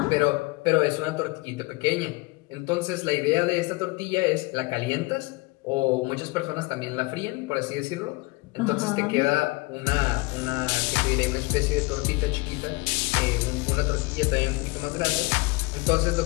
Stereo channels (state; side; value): quieter; right; 24.7 dB